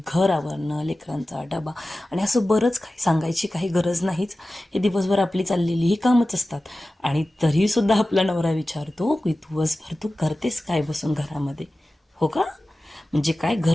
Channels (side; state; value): both; normal; correlation 0.95